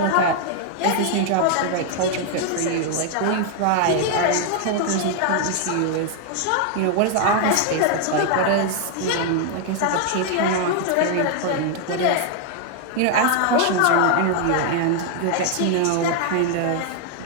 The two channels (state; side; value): different; both; correlation 0.00